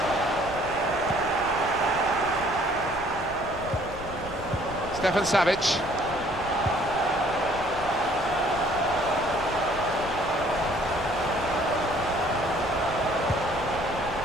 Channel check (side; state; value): left; noise; rumble, 15 dB below the sound